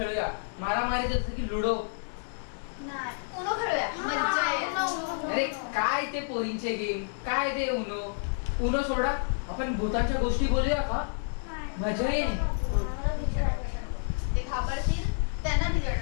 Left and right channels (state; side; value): silent; right; 58 dB below the other